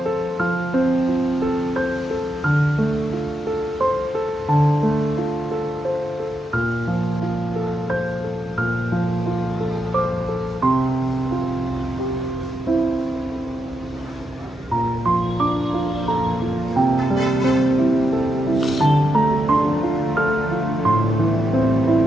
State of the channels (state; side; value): normal; both; correlation 0.83